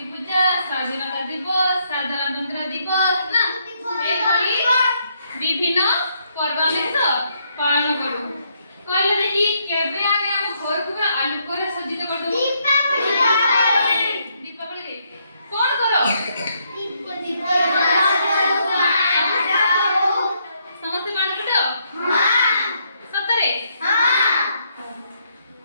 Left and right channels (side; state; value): both; inverted; correlation -0.74